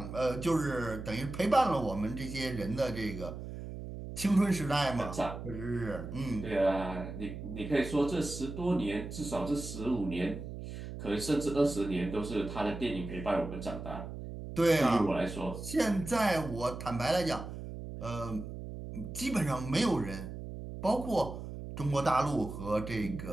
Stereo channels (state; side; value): noise; right; hum, 9 dB below the sound